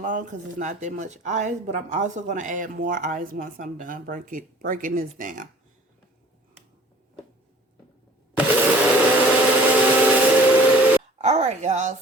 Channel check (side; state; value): both; normal; correlation 0.50